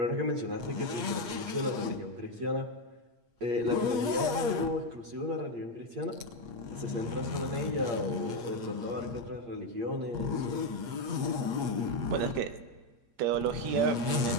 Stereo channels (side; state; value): left; late; 8.4 ms